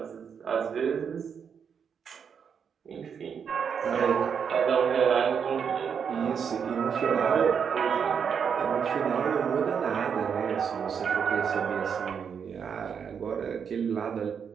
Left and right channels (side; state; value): left; quieter; 7.0 dB